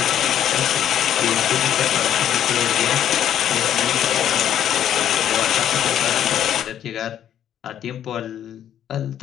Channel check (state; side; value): quieter; right; 10.4 dB